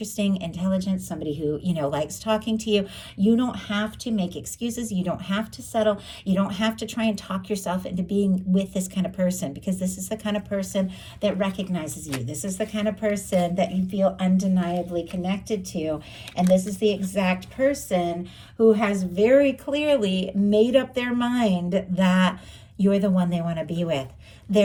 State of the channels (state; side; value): identical; both; correlation 1.00